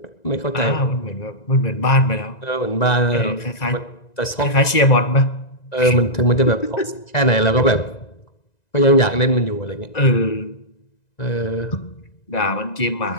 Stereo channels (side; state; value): right; late; 1.9 ms